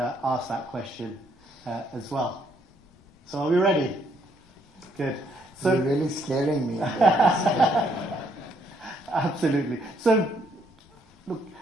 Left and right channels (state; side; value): normal; both; correlation 0.70